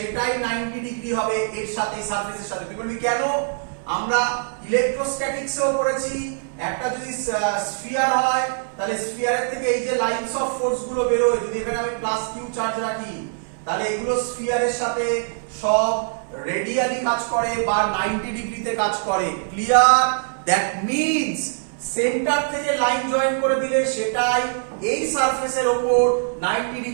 90 ডিগ্রি হবে এর সাথে, সারফেসের সাথে। তুই বলবি কেন? আমরা ইলেকট্রোস্ট্যাটিক্সেও পড়েছি, একটা যদি স্ফিয়ার হয় তাহলে স্ফিয়ারের থেকে এই যে লাইনস অফ ফোর্স গুলো বেরোয়, যদি এখানে আমি প্লাস কিউ চার্জ রাখি তাহলে এগুলো স্ফিয়ারের সাথে সব রেডিয়ালি কাজ করে বা 90 ডিগ্রিতে কাজ করে। ক্লিয়ার? দ্যাট মিন্স সেন্টার থেকে লাইন জয়েন করে দিলে সেটাই এই সারফেসের উপর 90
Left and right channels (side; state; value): left; silent; 61 dB below the other